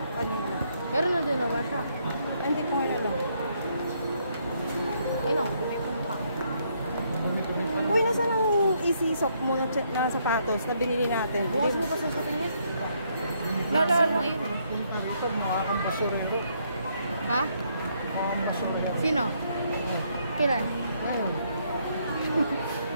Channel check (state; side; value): inverted; both; correlation -0.72